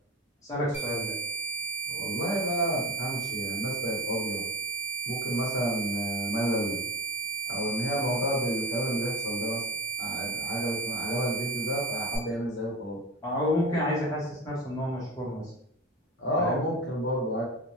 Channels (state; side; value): normal; both; correlation 0.30